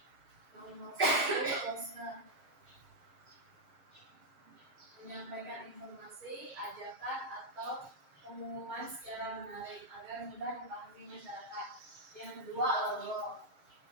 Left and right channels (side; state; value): left; late; 7.5 ms